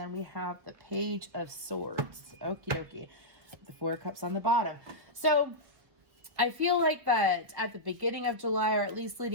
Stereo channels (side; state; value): left; late; 1.6 ms